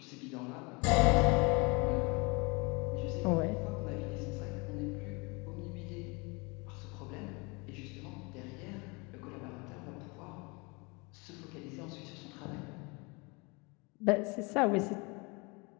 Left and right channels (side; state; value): right; quieter; 28.5 dB